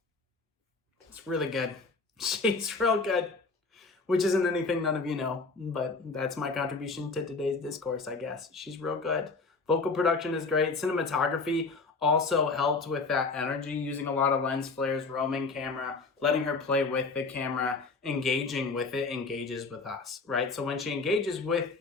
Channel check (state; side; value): quieter; right; 4.0 dB